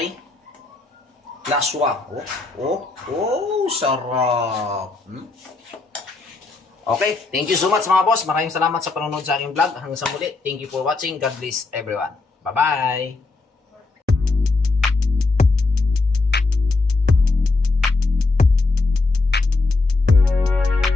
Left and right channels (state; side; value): quieter; right; 3.6 dB